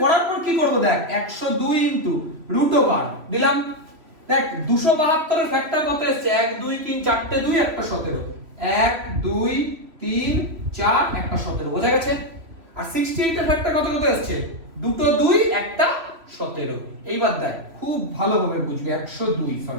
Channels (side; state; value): left; late; 3.0 ms